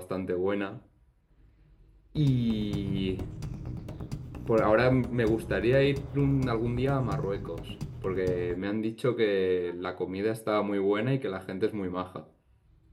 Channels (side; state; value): both; identical; correlation 1.00